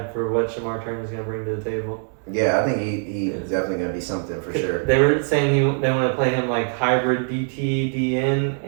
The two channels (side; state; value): left; silent; 58 dB below the other